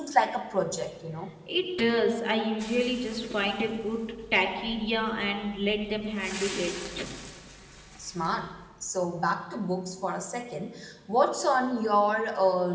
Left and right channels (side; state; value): both; identical; correlation 1.00